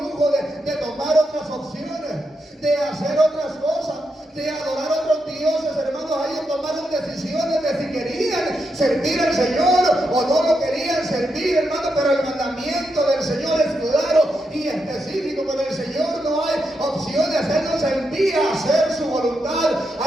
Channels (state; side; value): normal; both; correlation 0.83